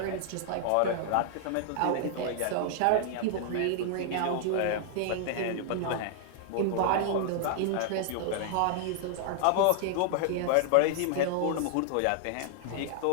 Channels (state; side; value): different; both; correlation -0.01